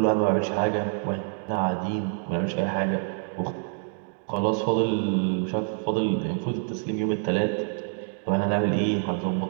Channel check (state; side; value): silent; left; 58 dB below the other